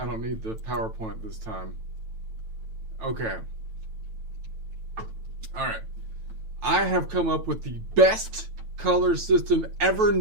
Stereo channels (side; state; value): left; late; 9.1 ms